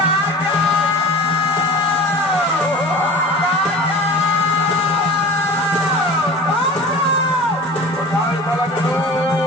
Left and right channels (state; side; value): normal; both; correlation 0.38